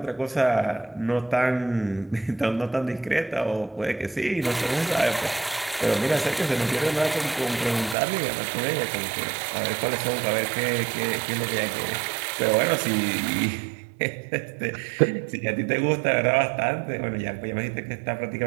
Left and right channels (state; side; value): drops out; left; at 8.0 s